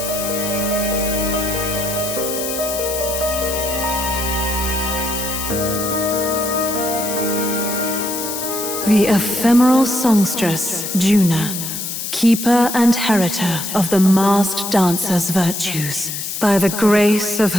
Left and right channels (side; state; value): left; noise; hiss, 5 dB below the sound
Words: The ephemeral songstress, Juna, keeper and heritor of the masked dancer's virtues, by the grace of